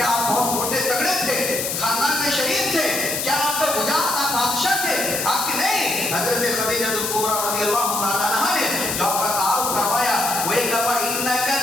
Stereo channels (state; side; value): noise; left; hiss, 2 dB below the sound